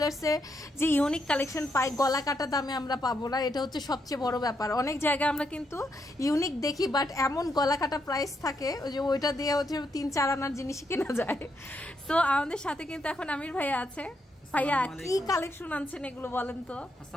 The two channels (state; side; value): normal; both; correlation 0.79